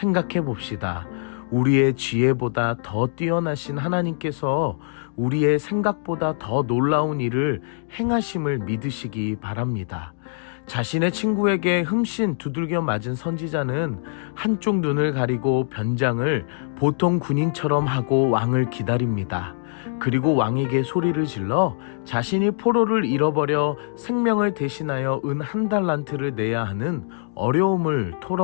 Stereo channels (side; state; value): right; silent; digital silence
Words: 봅시다. 우리의 지혜보다 더 뛰어나신 하나님께서 우리의 생각보다 더 놀라운 일을 행하심을 믿으시기 바랍니다. 자신의 친구에게 흠씬 두들겨 맞은 선지자는 한쪽 눈을 가리고 변장을 보통 군인처럼 하고 왕을 기다립니다. 그리고 왕에게 소리를 질러 자신이 포로를 잃어버려 생명을 대신하여 은 1달란트를 내야 하는 어려움을